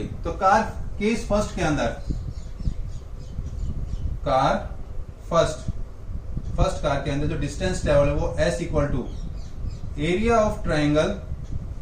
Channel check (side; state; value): both; identical; correlation 1.00